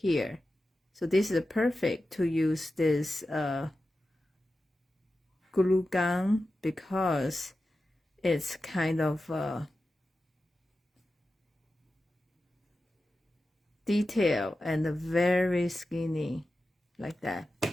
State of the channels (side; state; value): both; normal; correlation 0.93